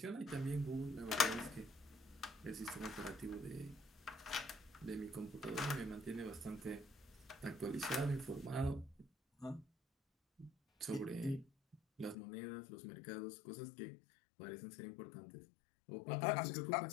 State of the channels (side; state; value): right; drops out; at 12.2 s